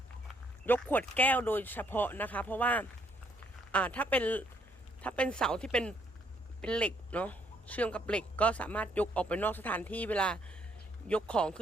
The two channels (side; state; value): both; normal; correlation 0.69